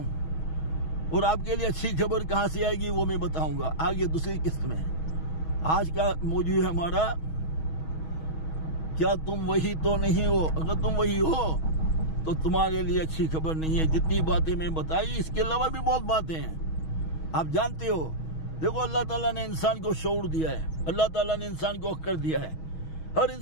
और आपके लिए अच्छी खबर कहाँ से आएगी वो मैं बताऊंगा आगे दूसरी किस्त में। आज का मौजू है हमारा, क्या तुम वही तो नहीं हो। अगर तुम वही हो तो तुम्हारे लिए अच्छी खबर नहीं है। जितनी बातें मैं बताई, इसके अलावा भी बहुत बातें हैं, आप जानते हो। देखो, अल्लाह ताला ने इंसान को शऊर दिया है, अल्लाह ताला ने इंसान को अक्ल दिया है। हर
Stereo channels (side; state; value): right; late; 6.3 ms